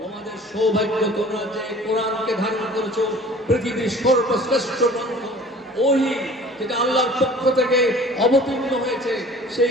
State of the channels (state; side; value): normal; both; correlation 0.46